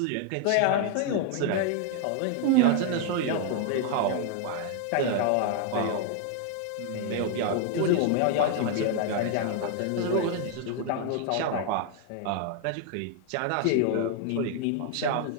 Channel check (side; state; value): both; different; correlation 0.00